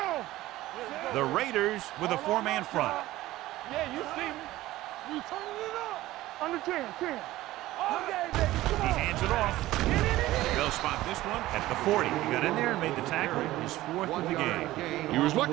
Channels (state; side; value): quieter; left; 16.4 dB